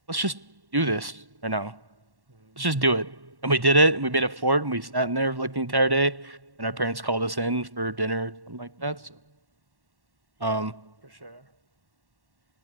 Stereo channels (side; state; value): left; late; 1.1 ms